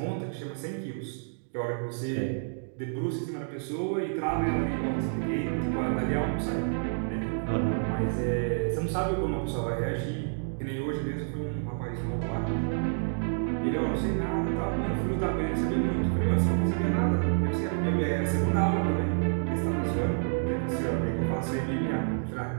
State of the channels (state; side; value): silent; left; digital silence